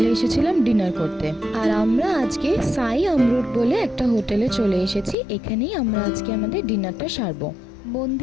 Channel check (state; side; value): drops out; right; at 5.2 s